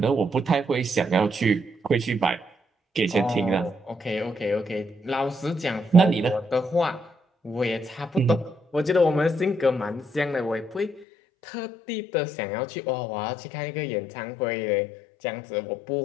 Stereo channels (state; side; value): drops out; right; at 11.1 s